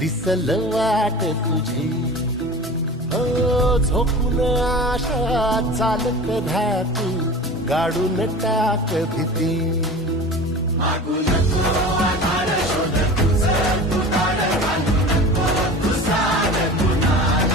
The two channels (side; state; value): both; normal; correlation 0.36